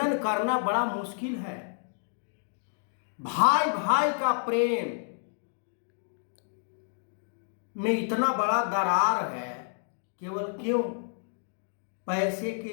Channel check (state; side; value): silent; right; digital silence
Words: करना बड़ा मुश्किल है। भाई भाई का प्रेम में इतना बड़ा दरार है, केवल क्यों? पैसे के